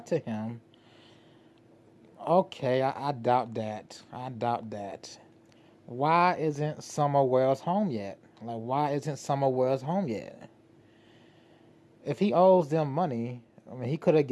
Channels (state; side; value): identical; both; correlation 1.00